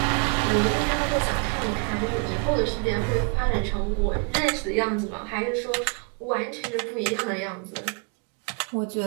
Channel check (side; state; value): left; quieter; 36.7 dB